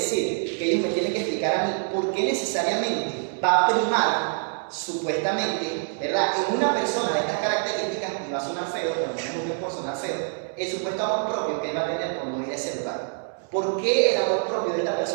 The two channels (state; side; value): silent; left; 61 dB below the other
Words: que ellos me tienen que explicar a mí por qué necesariamente va a primar, supuestamente, ¿verdad?, en una persona de estas características, y va a sonar feo, pero no por sonar feo, el supuesto amor propio que él va a tener por no ir a ese lugar. ¿Por qué el amor propio de esta